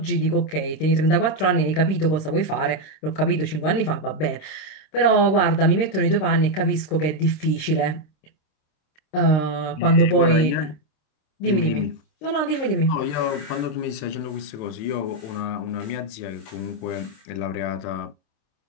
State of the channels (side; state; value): right; late; 26 ms